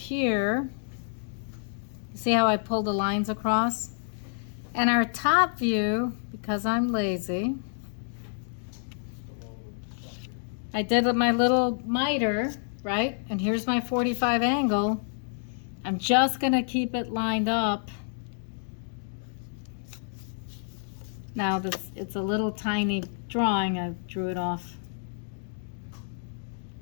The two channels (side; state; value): right; silent; digital silence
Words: See how I pulled the lines across? And our top view, because I'm lazy, I did with my little miter, right? And here's my 45 angle. I'm just gonna keep it lined up. Now this, it's a little tiny drawing, I drew it off.